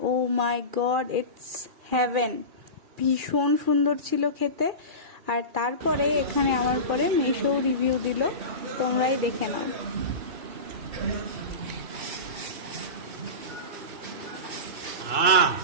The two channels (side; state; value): left; late; 2.4 ms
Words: ও মাই গড, ইটস হেভেন, ভীষণ সুন্দর ছিল খেতে। আর তারপরে এখানে আমার পরে মেশো রিভিউ দিল, তোমরাই দেখে নাও।